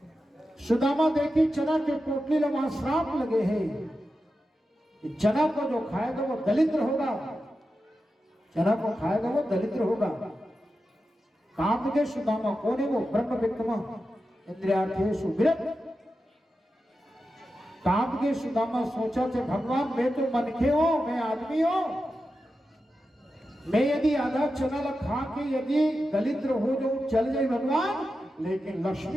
सुदामा देखी चना के पोटली ला वहां श्राप लगे हैं, चना को जो खाएगा वो दलिद्र होगा, चना को खाएगा वो दलिद्र होगा। काम के सुदामा कौन है? वो ब्रह्म विद्वान, इंद्रियार्थेषु विरक्त। काम के सुदामा सोचा थे, भगवान मैं तो मनखे हो, मैं आदमी हो, मैं यदि आधा चना खा के यदि दलिद्र हो जो चल जाए भगवान, लेकिन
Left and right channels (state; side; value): normal; both; correlation 0.90